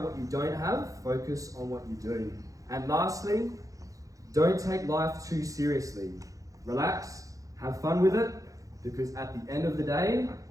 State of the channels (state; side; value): late; left; 0.16 ms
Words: what you don't have, focus on what you do. And lastly, don't take life too seriously. Relax, have fun with it, because at the end of the day,